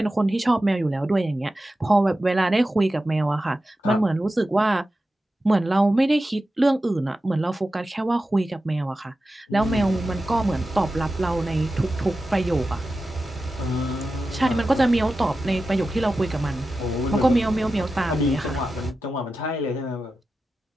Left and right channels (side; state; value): both; normal; correlation 0.92